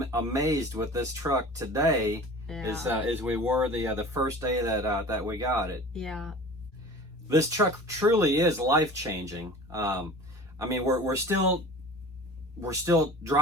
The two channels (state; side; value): normal; both; correlation 0.40